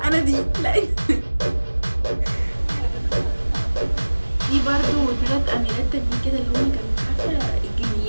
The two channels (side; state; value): both; inverted; correlation -1.00